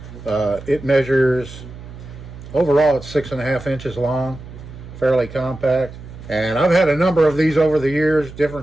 It measures, overall it's 6.5 inches long, fairly compact. And I've had a number of these over the years,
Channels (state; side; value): noise; right; hum, 15 dB below the sound